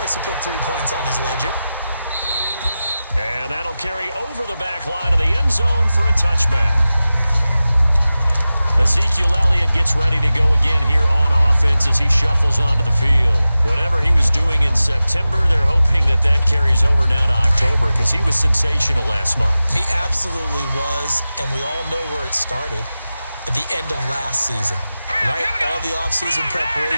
to put 3 points on his ledger. And that'll carry over the back line of the end zone for a touchback. Ezekiel Elliott gets ready to go again here on offense as he shuffles onto the field. Whatever he was doing in September, they're hoping that carries over now to October because he was sensational last month. He absolutely was, and we all know where it started. At the end of last season, right? All the offseason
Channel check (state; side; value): inverted; both; correlation -0.95